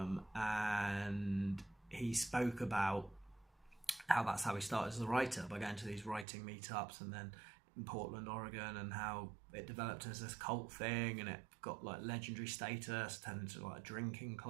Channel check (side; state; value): left; drops out; at 6.2 s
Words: he spoke about how that's how he started as a writer, by going to these writing meetups, and then in Portland, Oregon, and how it developed as this cult thing, and it got legendary status, turned into a drinking